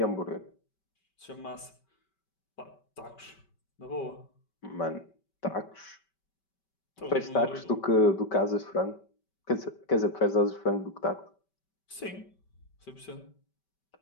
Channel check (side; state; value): right; late; 5.2 ms